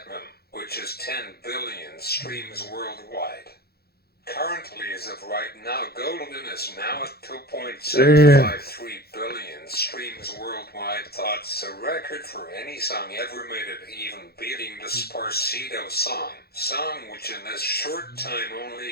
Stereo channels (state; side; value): late; right; 0.46 ms